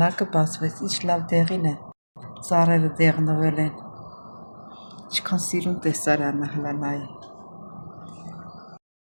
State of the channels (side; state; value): both; inverted; correlation -1.00